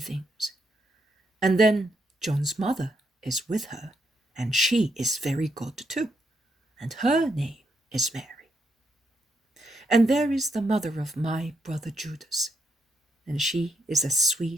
And then John's mother is with her, and she is very good too, and her name is Mary. And there is the mother of my brother Judas, and she is as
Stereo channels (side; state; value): both; normal; correlation 0.78